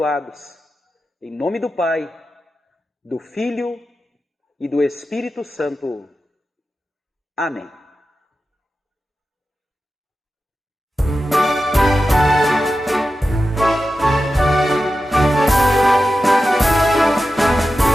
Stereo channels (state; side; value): normal; both; correlation 0.92